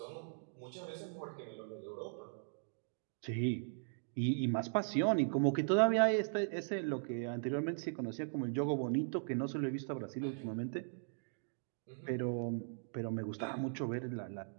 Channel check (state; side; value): silent; left; digital silence